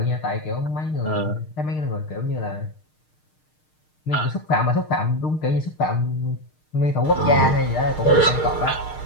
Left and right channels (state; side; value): late; right; 6.5 ms